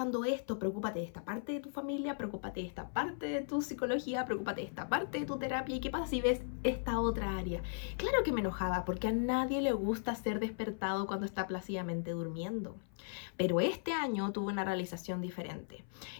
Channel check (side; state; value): right; silent; 53 dB below the other